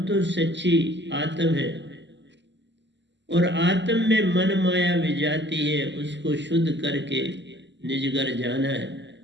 तो सच्ची आत्म है और आत्म में मन माया विजाती है। उसको शुद्ध करके निज घर जाना है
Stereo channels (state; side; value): late; left; 0.52 ms